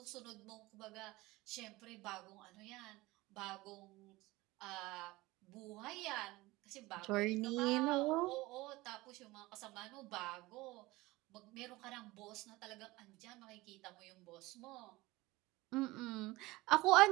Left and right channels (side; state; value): left; quieter; 20.4 dB